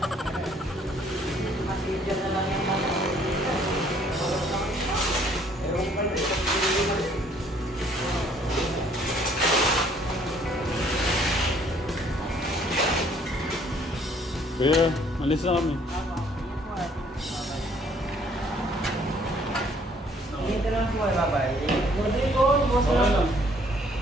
Kuya, alis na kami. Dito lang po, bye-bye. Good po, boss Okay lang. lang.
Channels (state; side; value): normal; both; correlation 0.61